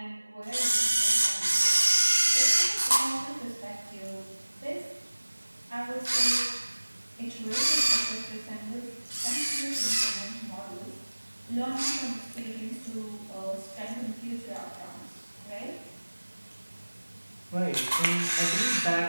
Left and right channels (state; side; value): inverted; both; correlation -1.00